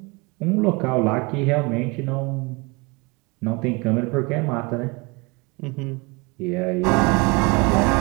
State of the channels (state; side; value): quieter; left; 27.2 dB